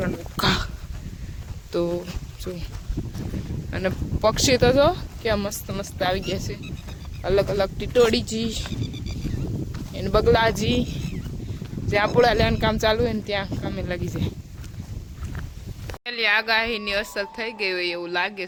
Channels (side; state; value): both; identical; correlation 1.00